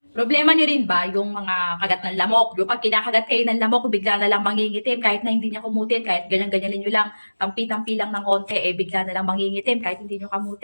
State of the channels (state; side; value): inverted; both; correlation -1.00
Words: Problema nyo rin ba yung mga kagat ng lamok? Yung pag kinakagat kayo ng lamok, bigla na lang mangingitim kahit na hindi niya kumutin, kahit ganyan-ganyanin nyo lang, tampi-tampi lang ng konti, bigla na lang mangingitim kahit hindi nyo